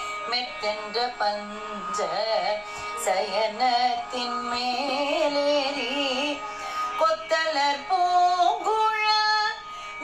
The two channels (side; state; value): both; identical; correlation 1.00